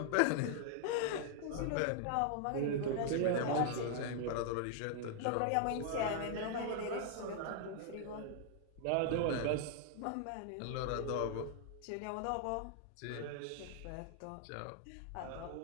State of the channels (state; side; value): different; both; correlation 0.00